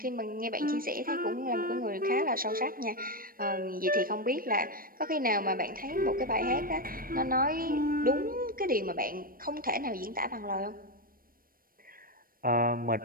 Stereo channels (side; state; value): left; late; 0.41 ms